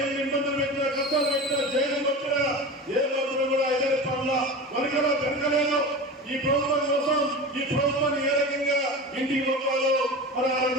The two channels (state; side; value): normal; both; correlation 0.30